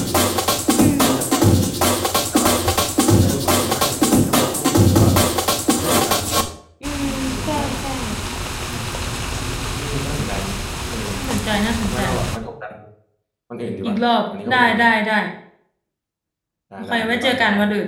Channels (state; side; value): identical; both; correlation 1.00